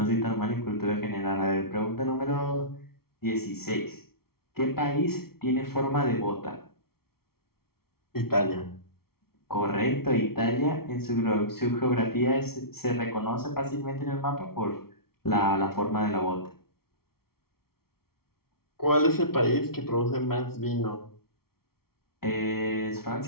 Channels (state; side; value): late; right; 0.94 ms